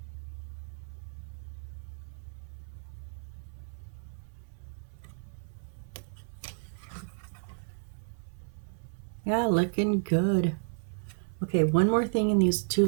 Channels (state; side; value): silent; left; 56 dB below the other